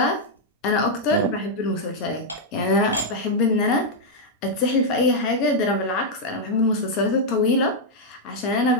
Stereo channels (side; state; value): both; normal; correlation -0.03